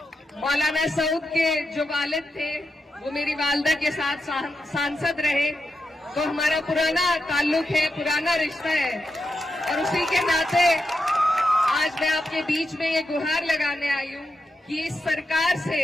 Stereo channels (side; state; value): both; normal; correlation 0.87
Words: मौलाना सऊद के जो वालिद थे वो मेरी वालदा के साथ सांसद रहे, तो हमारा पुराना ताल्लुक है, पुराना रिश्ता है और उसी के नाते आज मैं आपके बीच में ये गुहार लगाने आई हूँ कि इस सरकार से,